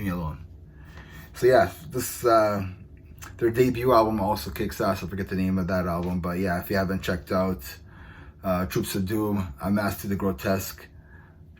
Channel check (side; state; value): both; identical; correlation 1.00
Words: me alone. So yeah, this, their debut album also kicks ass. I forget the name of that album, but yeah, if you haven't checked out Troops of Doom, Unmasked to the Grotesque,